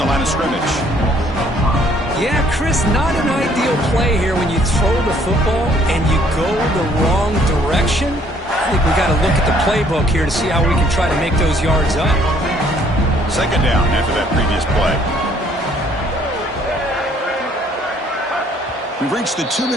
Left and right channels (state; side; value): normal; both; correlation 0.63